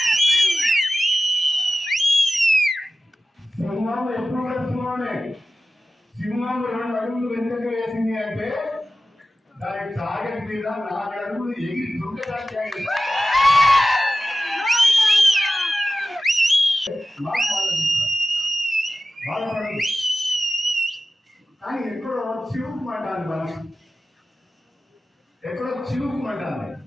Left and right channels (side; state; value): both; normal; correlation 0.94